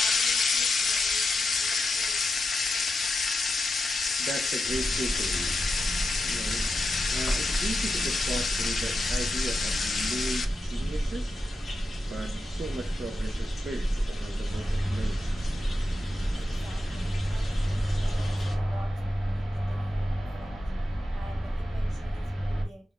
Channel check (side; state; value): both; normal; correlation 0.89